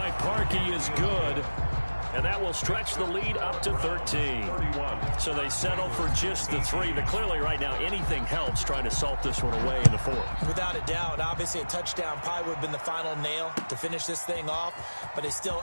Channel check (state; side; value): inverted; both; correlation -1.00